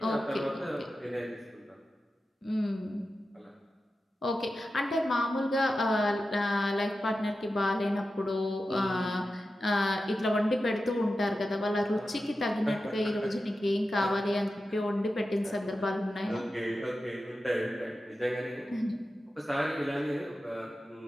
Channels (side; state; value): both; normal; correlation 0.92